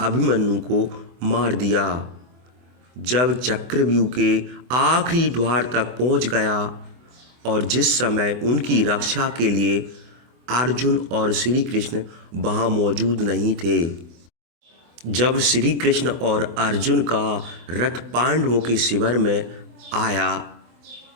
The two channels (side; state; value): left; late; 24 ms